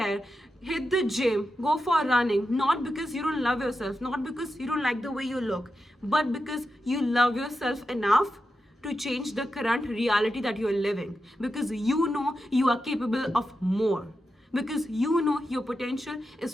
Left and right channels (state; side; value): normal; both; correlation 0.89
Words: hit the gym, go for running, not because you don't love yourself, not because you don't like the way you look, but because you love yourself enough to change the current reality that you are living, because you know you are capable of more, because you know your potential